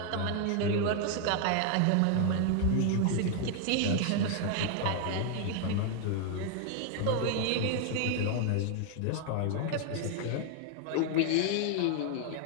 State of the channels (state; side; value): different; both; correlation 0.00